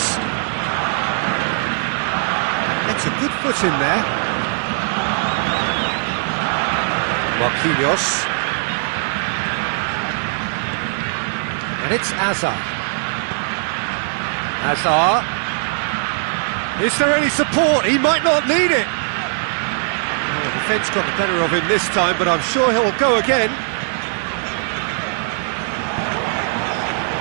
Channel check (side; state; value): left; silent; digital silence